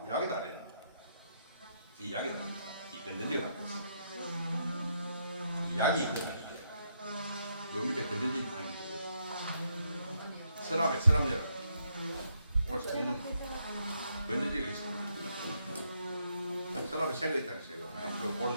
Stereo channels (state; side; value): inverted; both; correlation -0.76